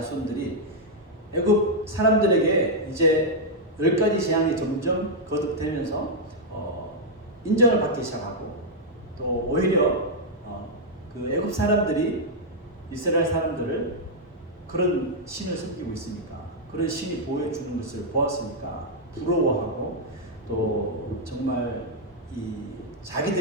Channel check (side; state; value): both; normal; correlation -0.03